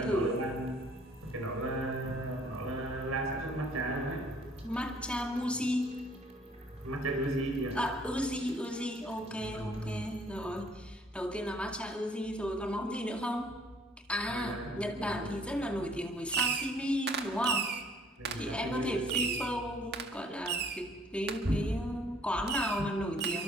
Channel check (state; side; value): normal; both; correlation 0.59